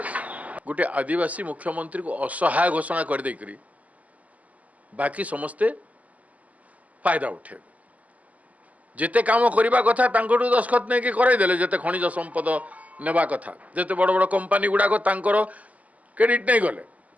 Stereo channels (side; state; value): left; late; 0.074 ms